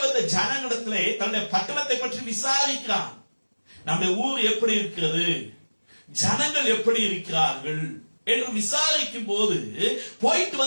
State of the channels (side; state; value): both; inverted; correlation -1.00